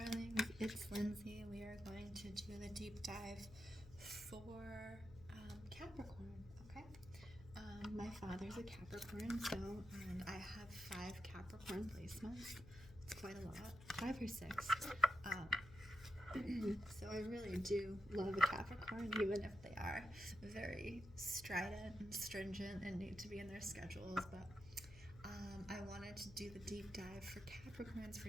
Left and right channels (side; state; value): left; noise; hum, 17 dB below the sound